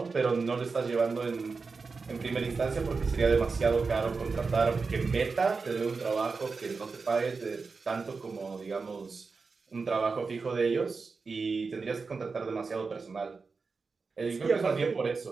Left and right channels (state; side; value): quieter; left; 4.6 dB